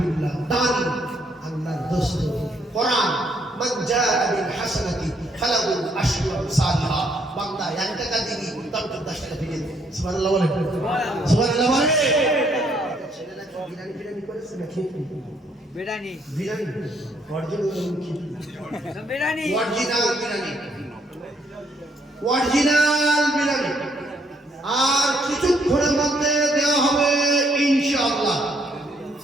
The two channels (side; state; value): both; normal; correlation 0.70